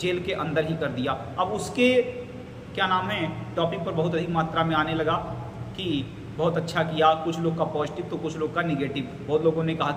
के अंदर ही कर दिया। अब उसके क्या नाम है टॉपिक पर बहुत अधिक मात्रा में आने लगा कि बहुत अच्छा किया, कुछ लोग का पॉजिटिव तो कुछ लोग का निगेटिव। बहुत लोगों ने कहा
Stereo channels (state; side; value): identical; both; correlation 1.00